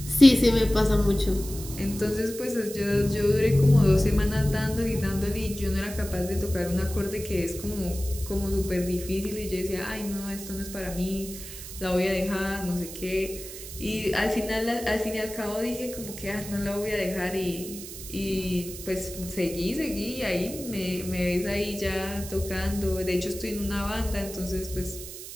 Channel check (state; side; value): noise; right; hiss, 12 dB below the sound